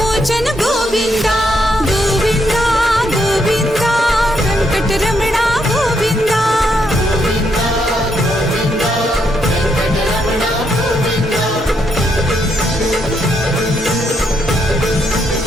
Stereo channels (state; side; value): normal; both; correlation 0.77